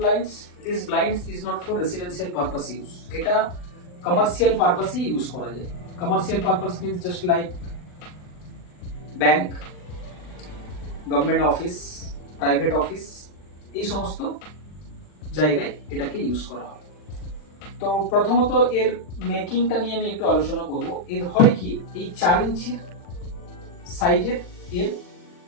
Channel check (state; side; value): late; right; 40 ms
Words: this blinds is not for residential purpose use, এটা কমার্শিয়াল পারপাসে ইউজ করা যায়। Commercial purpose means just like bank, government office, private office, এই সমস্ত জায়গায় এটাকে ইউজ করা হয়। তো প্রথমত এর মেকিংটা নিয়ে আমি একটু আলোচনা করব। এর হয় কি, এই 4 ইঞ্চির সাইজের এর